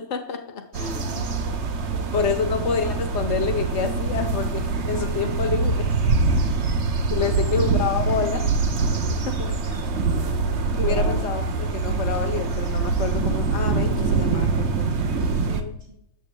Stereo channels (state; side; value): late; right; 3.3 ms